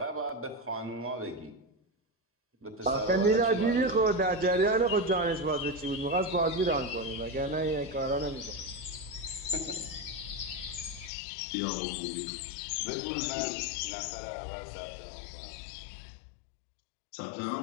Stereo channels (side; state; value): right; drops out; at 11.1 s